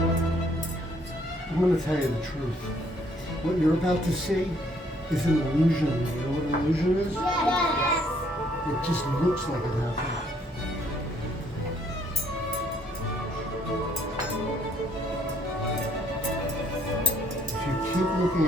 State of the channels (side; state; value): both; normal; correlation 0.65